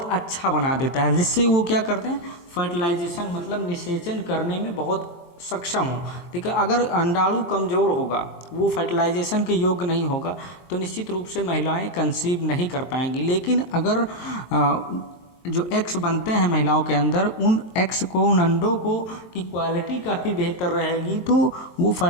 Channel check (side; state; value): right; late; 23 ms